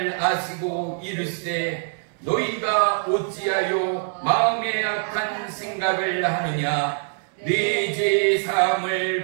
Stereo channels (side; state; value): left; silent; digital silence